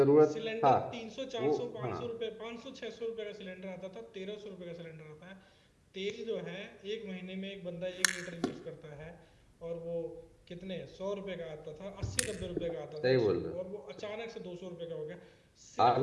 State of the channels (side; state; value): both; identical; correlation 1.00